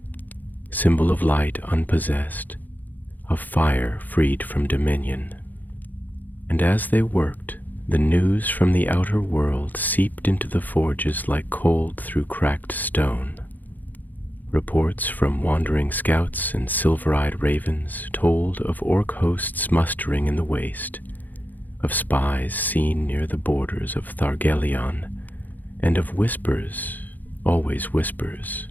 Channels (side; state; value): right; late; 0.084 ms